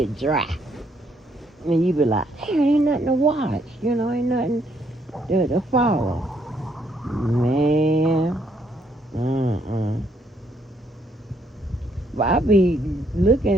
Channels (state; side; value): normal; both; correlation 0.71